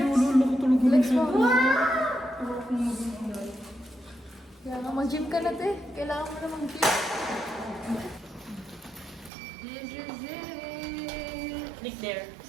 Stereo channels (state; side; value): drops out; left; at 9.3 s